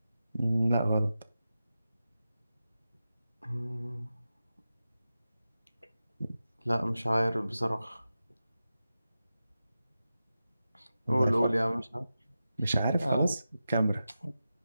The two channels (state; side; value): inverted; both; correlation -0.92